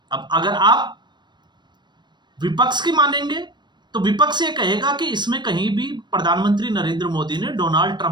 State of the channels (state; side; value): late; left; 0.22 ms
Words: अब अगर आप विपक्ष की मानेंगे तो विपक्ष ये कहेगा कि इसमें कहीं भी प्रधानमंत्री नरेंद्र मोदी ने डोनाल्ड